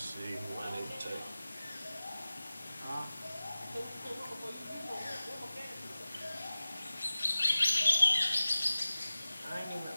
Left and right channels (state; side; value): inverted; both; correlation -0.96